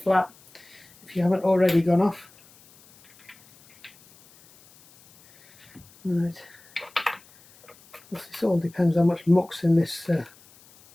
flat if you haven't already gone off. Right. This all depends how much muck's in this.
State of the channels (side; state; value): left; noise; hiss, 27 dB below the sound